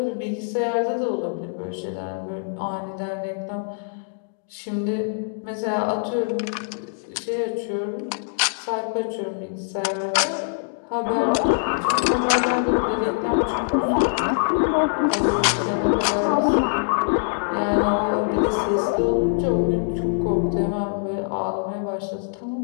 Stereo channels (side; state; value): right; silent; digital silence